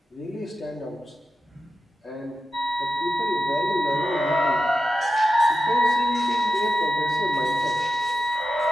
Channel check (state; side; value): normal; both; correlation 0.90